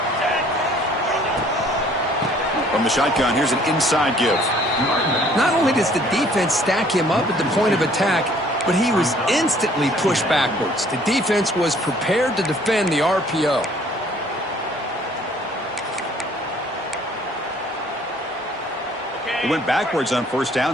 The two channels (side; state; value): both; normal; correlation 0.58